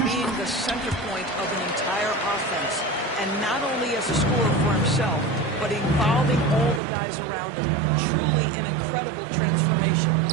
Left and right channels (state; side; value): drops out; left; at 6.8 s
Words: being the center point of an entire offense. And not only as a scorer for himself, but involving all the guys around him. Truly an incredible transformation.